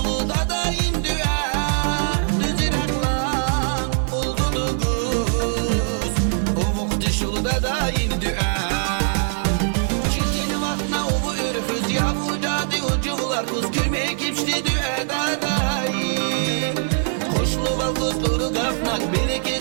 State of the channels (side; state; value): left; silent; digital silence